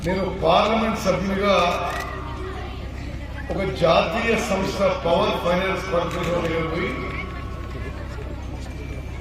నేను పార్లమెంట్ సభ్యునిగా ఒక జాతీయ సంస్థ పవర్ ఫైనాన్స్ కార్పొరేషన్ పోయి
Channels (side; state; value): both; identical; correlation 1.00